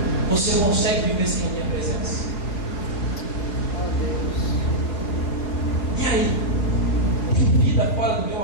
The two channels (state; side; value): late; right; 5.0 ms